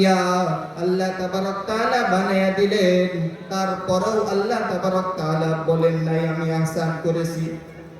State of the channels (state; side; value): identical; both; correlation 1.00